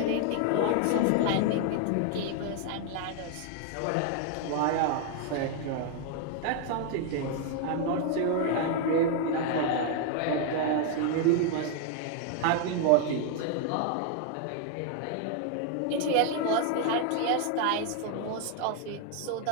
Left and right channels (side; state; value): both; different; correlation 0.00